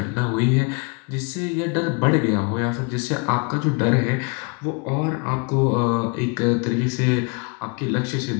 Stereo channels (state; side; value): quieter; right; 32.4 dB